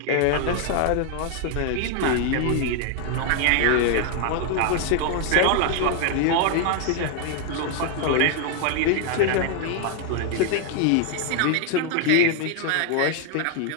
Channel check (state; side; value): different; both; correlation 0.00